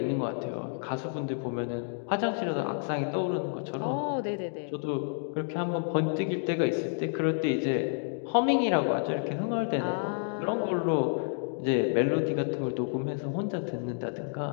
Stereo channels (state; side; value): silent; right; digital silence